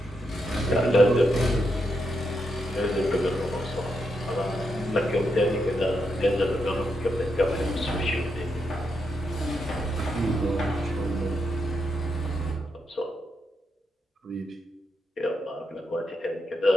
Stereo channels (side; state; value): both; normal; correlation 0.82